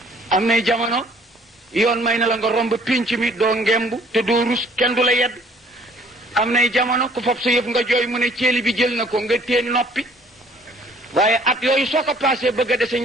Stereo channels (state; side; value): normal; both; correlation 0.58